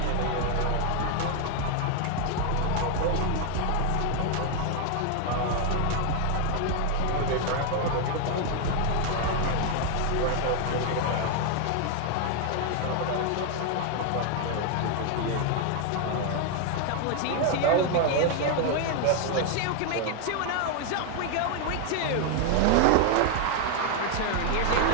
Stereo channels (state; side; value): different; both; correlation 0.00